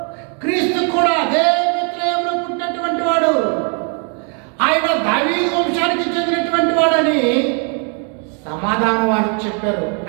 క్రీస్తు కూడా అదే బెత్లెహేములో పుట్టినటువంటి వాడు. ఆయన దావీదు వంశానికి చెందినటువంటి వాడని సమాధానం వారికి చెప్పారు.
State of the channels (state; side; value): quieter; left; 39.2 dB